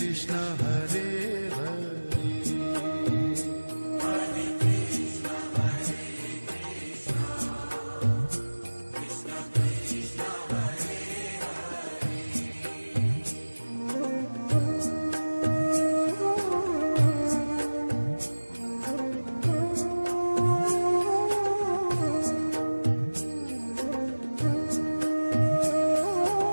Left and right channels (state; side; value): inverted; both; correlation -1.00